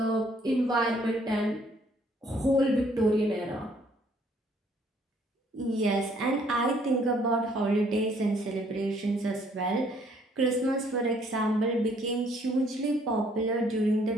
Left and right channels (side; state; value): both; normal; correlation 0.63